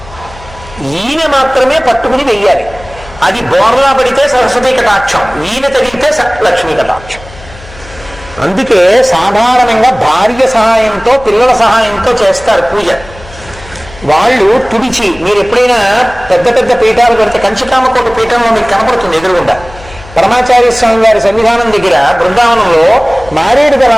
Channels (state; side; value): noise; left; hum, 19 dB below the sound